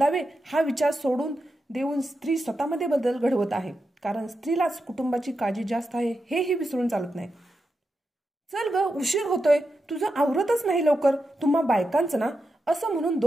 हा विचार सोडून देऊन स्त्री स्वतःमध्ये बदल घडवत आहे, कारण स्त्रीलाच कुटुंबाची काळजी जास्त आहे हेही विसरून चालत नाही. चल ग, उशीर होतोय, तुझं आवरतच नाही लवकर. तुम्हा बायकांचं ना, असं म्हणून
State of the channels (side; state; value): both; normal; correlation 0.88